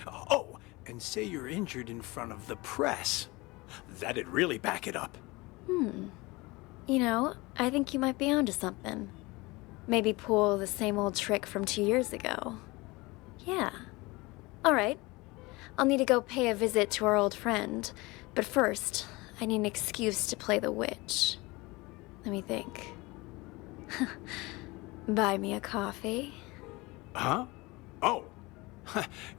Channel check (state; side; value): quieter; right; 23.2 dB